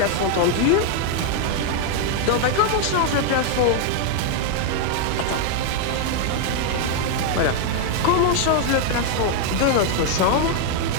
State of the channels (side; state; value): both; different; correlation 0.00